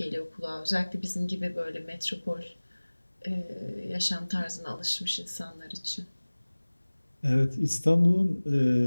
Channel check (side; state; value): both; inverted; correlation -1.00